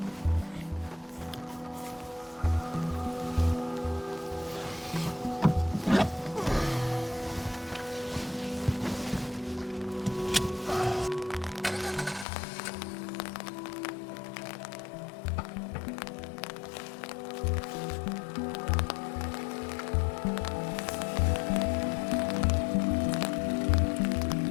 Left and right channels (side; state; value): right; drops out; at 12.2 s